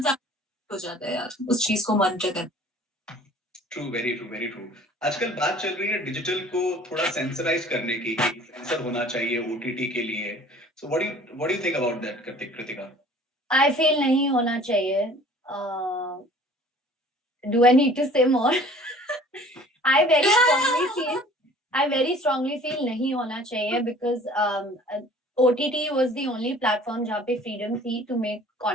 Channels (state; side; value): normal; both; correlation 0.49